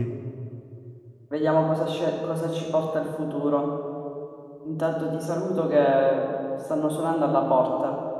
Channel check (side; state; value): both; identical; correlation 1.00